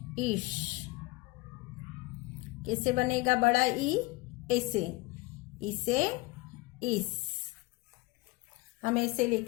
इश. कैसे बनेगा बड़ा ई? ऐसे. इसे इस. हम ऐसे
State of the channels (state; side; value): quieter; right; 21.6 dB